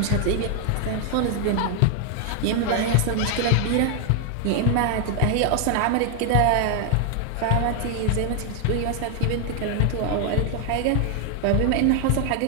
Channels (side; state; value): both; different; correlation 0.00